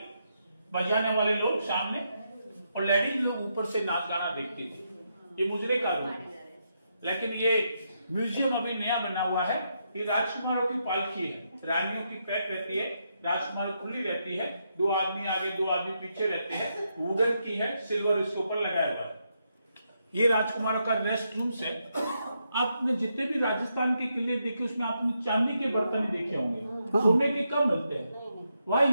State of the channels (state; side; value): inverted; both; correlation -0.81